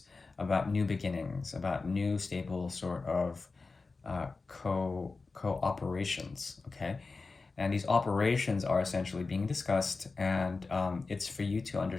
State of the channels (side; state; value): right; quieter; 4.0 dB